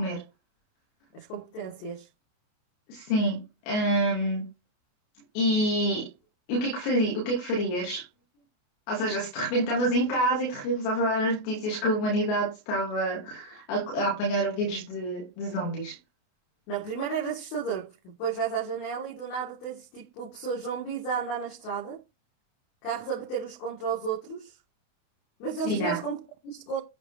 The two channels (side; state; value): right; late; 28 ms